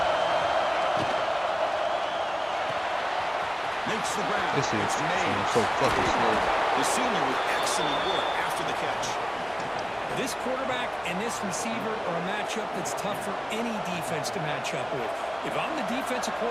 This is so fucking slow. The senior with excellent work after the catch. This quarterback and this receiver are a matchup that's tough for any defense to match up with. If I'm the defensive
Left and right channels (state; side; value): identical; both; correlation 1.00